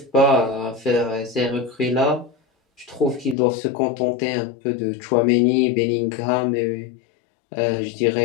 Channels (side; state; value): right; drops out; at 3.4 s